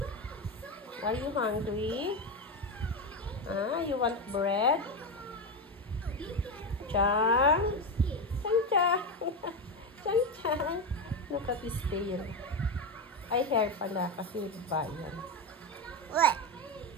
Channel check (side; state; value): both; normal; correlation 0.13